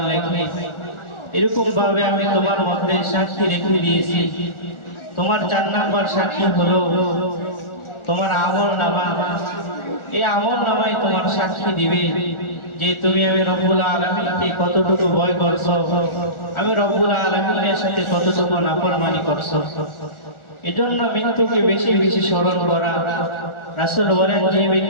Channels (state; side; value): late; right; 1.4 ms